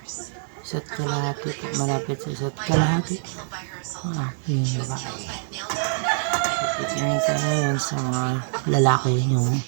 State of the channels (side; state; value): left; silent; digital silence